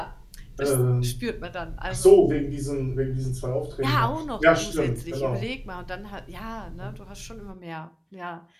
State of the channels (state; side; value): identical; both; correlation 1.00